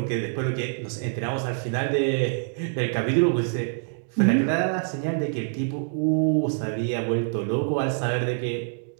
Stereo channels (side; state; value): left; silent; digital silence